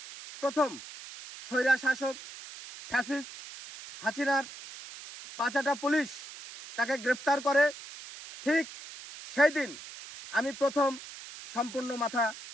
প্রথম স্বৈরা শাসক ফ্যাসিস্ট হাসিনার পাঁচাটা পুলিশ তাকে গ্রেপ্তার করে, ঠিক সেই দিন আমি প্রথম সম্পূর্ণ মাথা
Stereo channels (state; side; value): noise; right; hiss, 14 dB below the sound